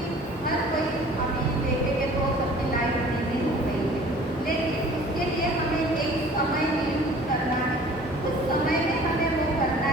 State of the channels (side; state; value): both; normal; correlation 0.48